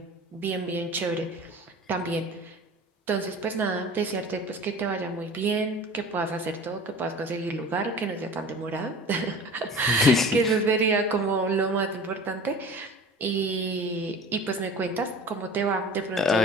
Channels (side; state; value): both; normal; correlation 0.40